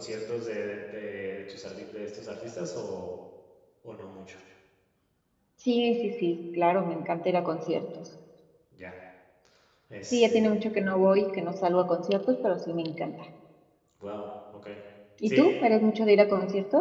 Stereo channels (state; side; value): identical; both; correlation 1.00